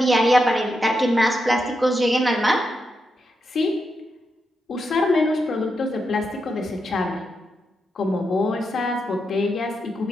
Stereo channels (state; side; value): normal; both; correlation 0.85